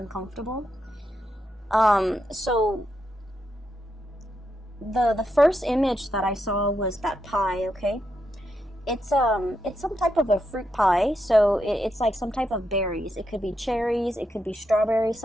So the first image that I saw was that pie, okay? It's some type of a fruit pie, so it's like some type of berries. It could be cherries, it could be strawberries,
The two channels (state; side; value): normal; both; correlation 0.83